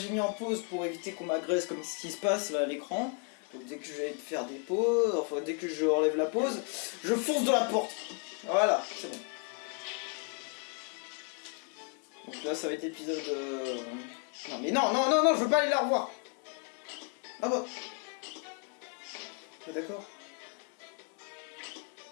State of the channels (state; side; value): quieter; right; 36.8 dB